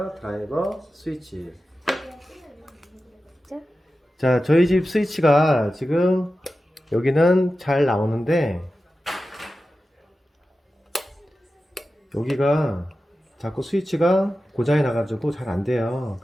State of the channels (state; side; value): normal; both; correlation 0.93